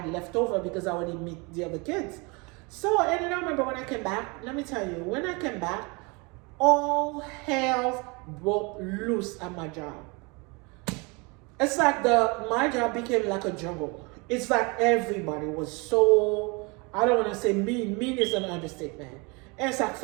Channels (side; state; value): left; quieter; 28.7 dB